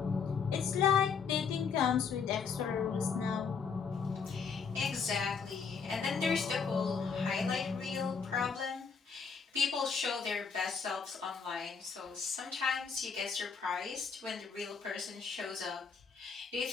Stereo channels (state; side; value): quieter; right; 5.8 dB